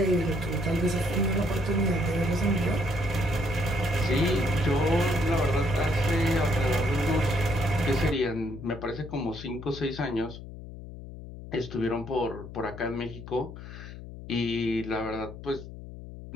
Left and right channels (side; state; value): left; noise; hum, 13 dB below the sound